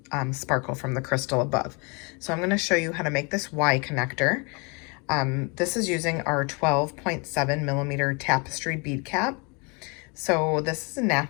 sparkle from the crystal above. So I'm going to show you how to make this Y connector. This is using our 12.7mm Tapestry bead cap. So this is a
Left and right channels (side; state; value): right; quieter; 31.5 dB